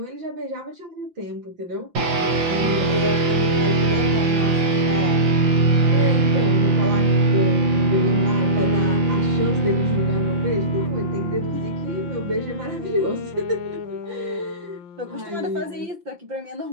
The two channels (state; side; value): late; left; 5.8 ms